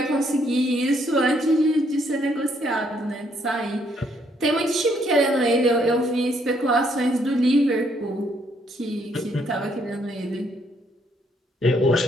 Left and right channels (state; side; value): normal; both; correlation 0.70